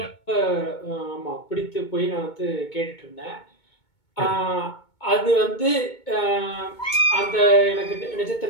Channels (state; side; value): late; right; 2.2 ms